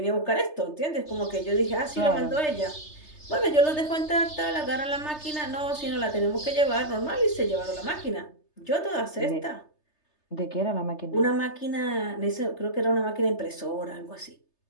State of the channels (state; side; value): late; right; 3.3 ms